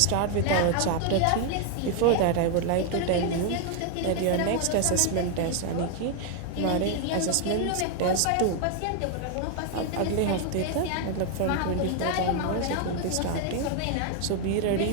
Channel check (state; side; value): different; both; correlation 0.00